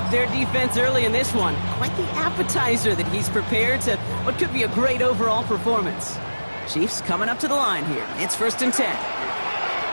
their defense early in this one. Quite the appetizer that he's prepared to what could be a great overall performance. Chiefs coming up to the line here. It's 1st and 10.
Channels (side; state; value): both; inverted; correlation -1.00